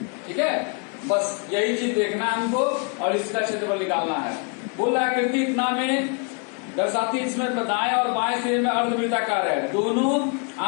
ठीक है, बस यही चीज देखना है हमको, और इसका क्षेत्रफल निकालना है। बोल रहा है आकृति इतना में दर्शाती, इसमें दाएं और बाएं सिरे में अर्धवृत्ताकार है। दोनों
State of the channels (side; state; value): right; quieter; 35.1 dB